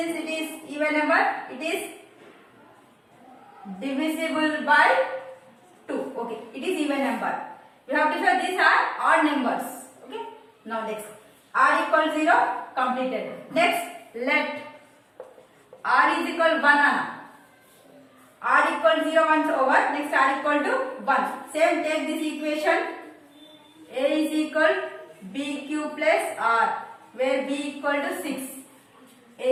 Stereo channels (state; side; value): identical; both; correlation 1.00